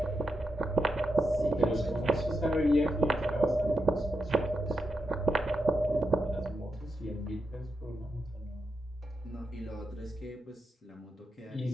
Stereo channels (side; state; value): both; normal; correlation 0.85